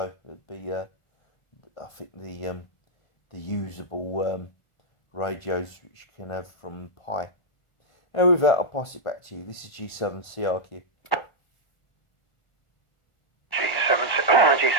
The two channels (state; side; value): late; right; 1.4 ms